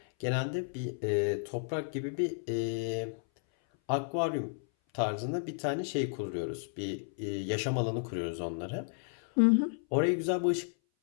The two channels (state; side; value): silent; right; 56 dB below the other